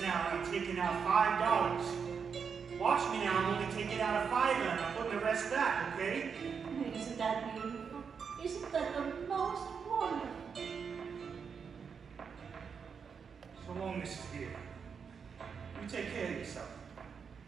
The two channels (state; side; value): quieter; left; 6.3 dB